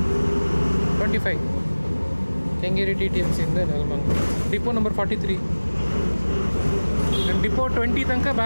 25 Kengeri TTMC ಇಂದ ನೆಲಮಂಗಲ. Depot number 43. ನಾನು ಡಿಪೋ 20 ತನಕ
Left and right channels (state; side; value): inverted; both; correlation -1.00